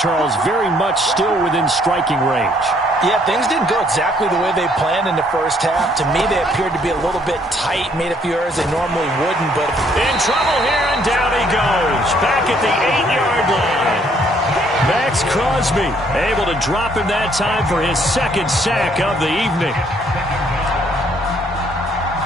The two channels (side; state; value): both; normal; correlation 0.66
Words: very much still within striking range. Yeah, things didn't go exactly the way they planned in the first half. To me, they appeared to be a little bit tight, made a few errors they normally wouldn't. But in trouble here, and down he goes. Back at the 8-yard line. Max Crosby able to drop him that time for his second sack of the evening.